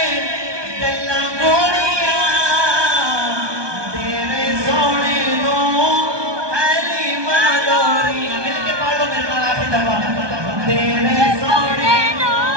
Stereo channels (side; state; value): left; late; 1.2 ms